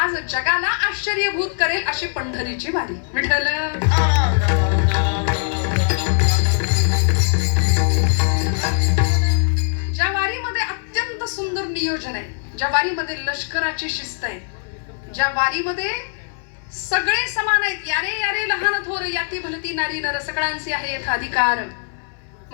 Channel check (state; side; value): silent; right; 63 dB below the other